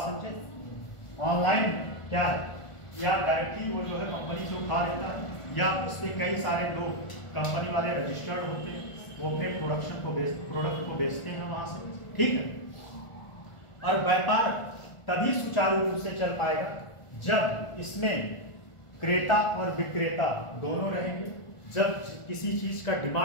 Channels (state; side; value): late; right; 1.4 ms